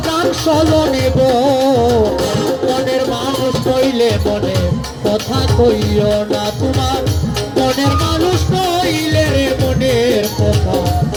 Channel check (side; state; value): both; identical; correlation 1.00